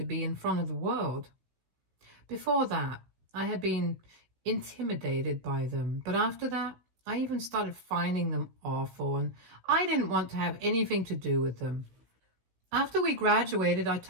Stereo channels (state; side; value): late; left; 16 ms